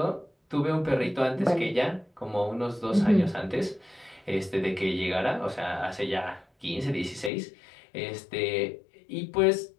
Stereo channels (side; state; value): right; drops out; at 7.3 s